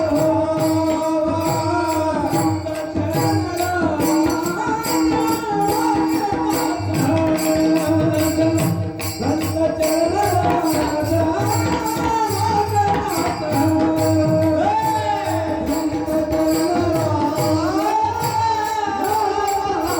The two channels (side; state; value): both; identical; correlation 1.00